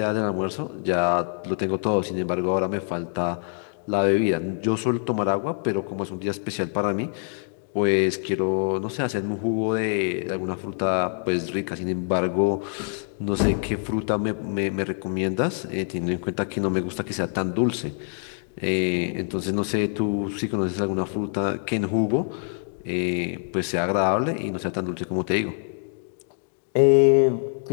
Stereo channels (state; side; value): silent; right; 62 dB below the other